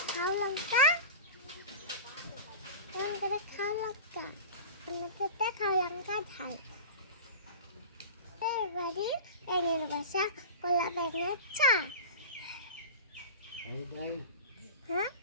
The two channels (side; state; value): both; inverted; correlation -0.31